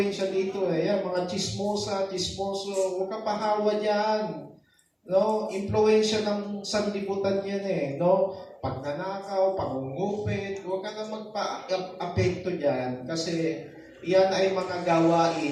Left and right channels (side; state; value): both; identical; correlation 1.00